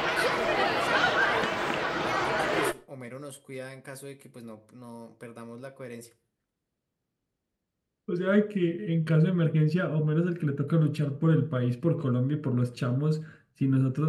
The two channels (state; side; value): identical; both; correlation 1.00